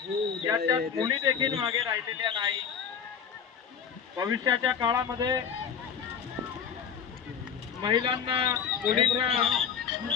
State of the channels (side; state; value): right; quieter; 7.3 dB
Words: याच्यात मुली देखील मागे राहिलेल्या नाही. भविष्याच्या काळामध्ये महिलांना मुलींना